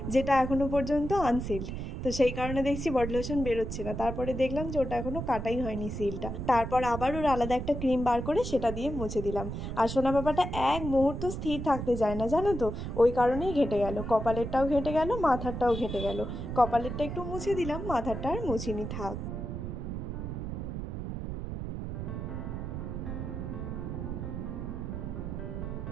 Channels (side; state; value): right; noise; rumble, 5 dB below the sound